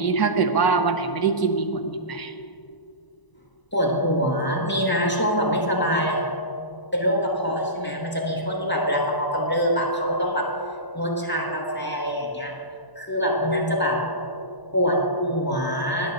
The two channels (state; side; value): late; right; 1.0 ms